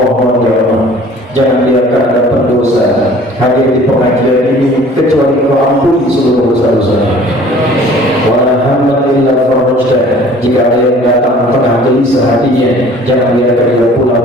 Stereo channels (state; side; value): normal; both; correlation 0.50